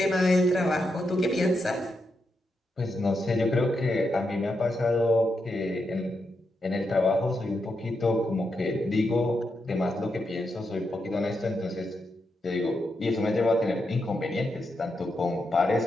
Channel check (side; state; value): both; normal; correlation 0.84